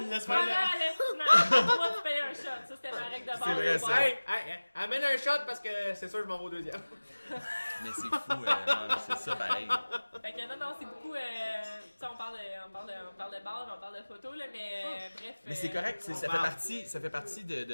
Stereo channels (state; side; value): inverted; both; correlation -1.00